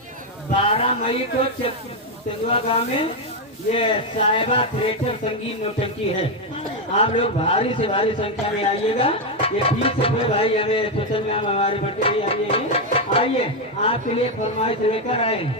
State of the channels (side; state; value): both; normal; correlation 0.04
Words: 12 मई को तेंदुआ गांव में ये साहिबा थिएटर संगीत नौटंकी है। आप लोग भारी से भारी संख्या में आइएगा। ये 20 रुपये भाई हमें स्पेशल में हमारे बच्चे भी आइए आपके लिए फरमाइश लेकर आए